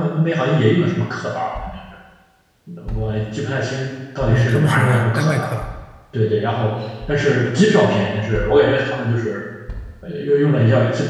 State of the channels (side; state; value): both; identical; correlation 1.00